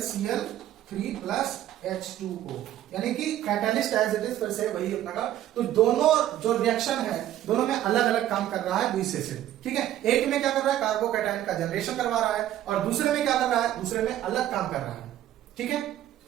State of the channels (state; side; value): quieter; left; 12.5 dB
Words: प्लस H2O, यानी कि कैटलिस्ट एज इट इज फिर से वही अपना का। तो दोनों जो रिएक्शन है दोनों में अलग अलग काम कर रहा है लुईस एसिड। ठीक है, एक में क्या कर रहा है, कार्बोकैटायन का जनरेशन करवा रहा है, और दूसरे में क्या कर रहा है, दूसरे में अलग काम कर रहा है। ठीक है,